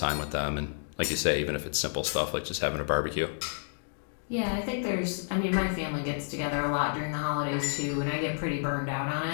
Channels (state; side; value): silent; right; digital silence